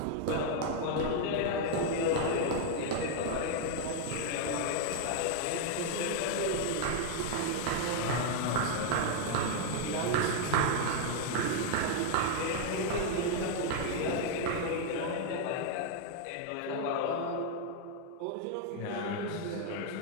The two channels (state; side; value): different; both; correlation 0.00